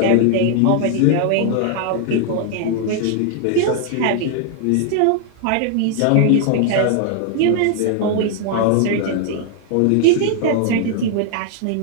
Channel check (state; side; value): different; both; correlation 0.00